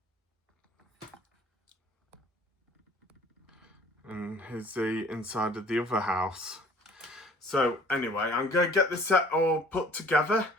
And here's the inside of the other house. So anyway, I'm going to get this set all put together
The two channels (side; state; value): both; normal; correlation 0.52